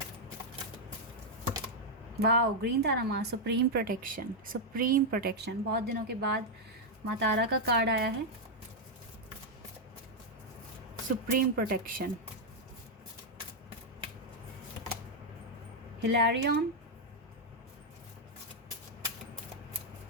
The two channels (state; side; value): normal; both; correlation -0.01